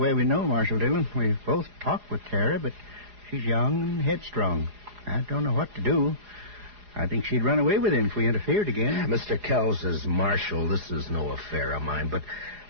we know, Marshal Dillon. We've both talked with Tara, but she's young and headstrong. I don't know what to do. I think she'd run away with him if we interfered again. Mr. Kells, as Marshal, this is no affair of mine, but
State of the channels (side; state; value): left; late; 4.8 ms